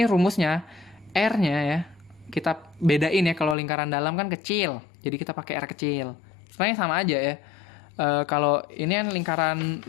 rumusnya R-nya ya kita bedain ya. Kalau lingkaran dalam kan kecil, jadi kita pakai R kecil. Sebenarnya sama aja ya. Kalau ini kan lingkaran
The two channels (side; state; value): right; drops out; at 3.6 s